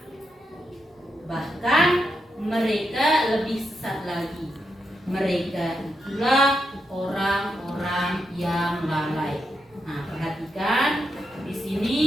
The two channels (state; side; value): normal; both; correlation 0.84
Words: Bahkan mereka lebih sesat lagi. Mereka itulah orang-orang yang lalai. Nah, perhatikan di sini